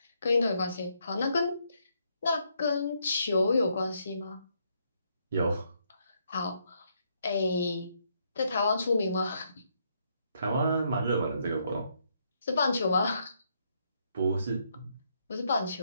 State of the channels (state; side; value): inverted; both; correlation -0.75